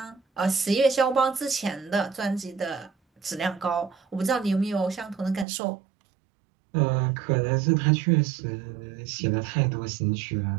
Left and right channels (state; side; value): drops out; left; at 5.5 s